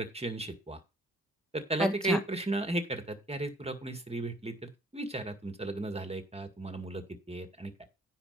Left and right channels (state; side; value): normal; both; correlation 0.60